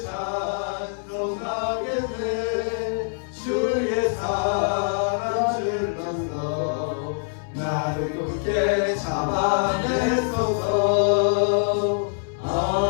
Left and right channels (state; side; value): silent; right; 62 dB below the other